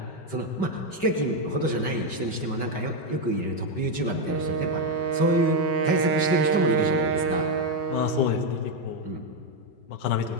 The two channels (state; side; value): late; right; 5.2 ms